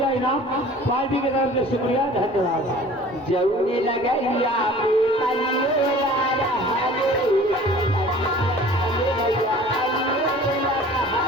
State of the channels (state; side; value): normal; both; correlation 0.46